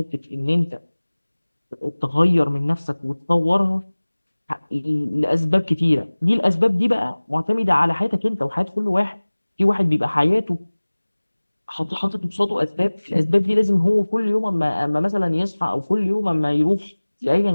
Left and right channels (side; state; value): both; inverted; correlation -1.00